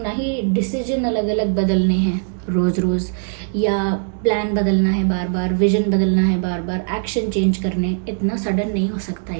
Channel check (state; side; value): silent; left; digital silence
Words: ही डिसीजन अलग अलग बदलने हैं रोज़ रोज़, या प्लान बदलना है बार बार, विजन बदलना है बार बार, एक्शन चेंज करने। इतना सडन नहीं हो सकता